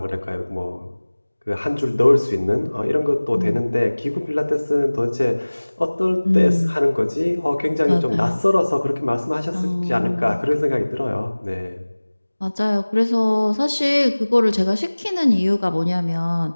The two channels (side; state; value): both; inverted; correlation -1.00